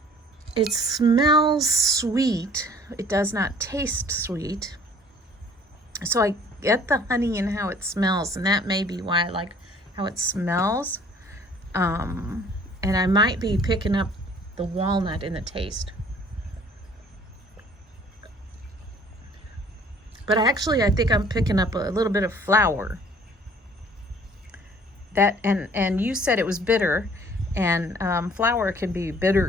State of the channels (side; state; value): both; normal; correlation 0.54